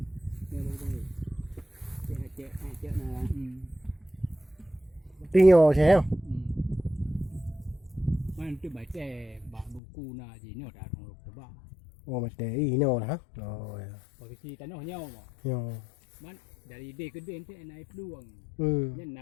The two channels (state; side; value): drops out; right; at 9.8 s